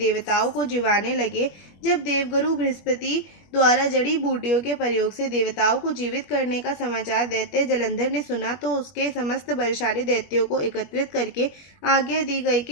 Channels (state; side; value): late; right; 21 ms